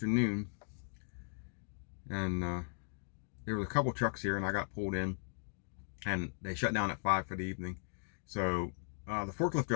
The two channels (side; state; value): right; silent; digital silence